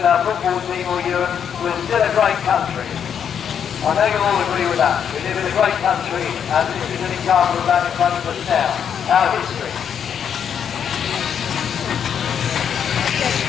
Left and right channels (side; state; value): right; quieter; 8.1 dB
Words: our football team or Europe, we're still a great country. I know you'll all agree with that. We live in a great country, and this is an example of that in front of us now. Our history.